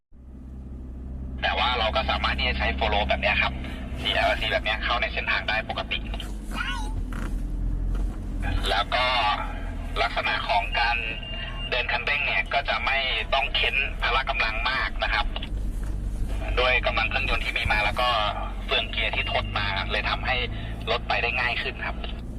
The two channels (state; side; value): identical; both; correlation 1.00